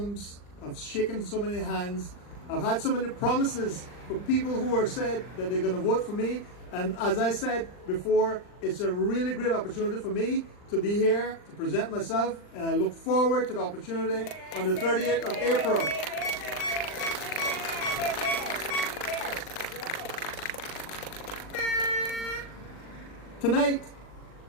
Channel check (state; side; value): late; right; 39 ms